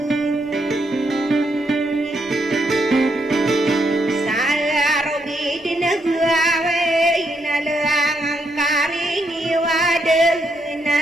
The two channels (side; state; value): both; normal; correlation 0.77